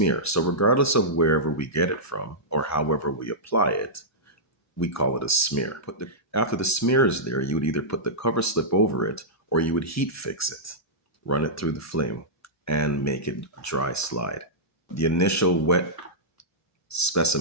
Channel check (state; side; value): normal; both; correlation -0.12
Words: So regardless of wherever we get it from or however we apply it, we call it a smear. After the smear is there, you would either put the cover slip over it or you would heat fix it, run it through the flame, and make it a dry slide. The initial wet